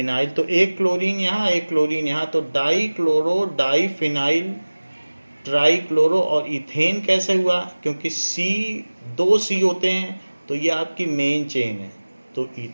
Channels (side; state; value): both; inverted; correlation -1.00